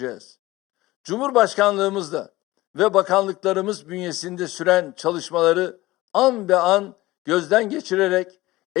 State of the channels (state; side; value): quieter; right; 18.5 dB